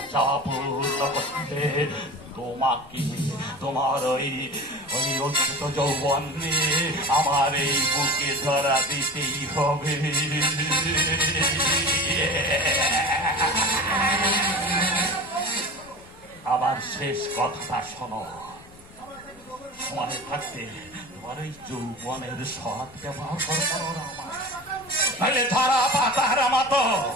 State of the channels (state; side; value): noise; left; rumble, 24 dB below the sound